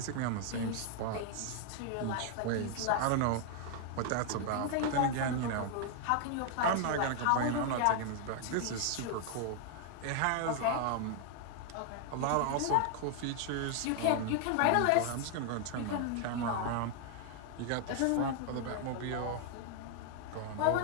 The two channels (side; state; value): both; different; correlation 0.00